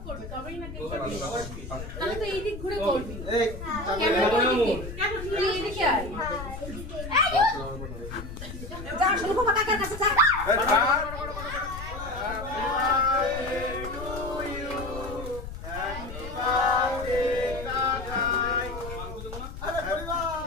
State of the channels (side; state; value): left; noise; rumble, 10 dB below the sound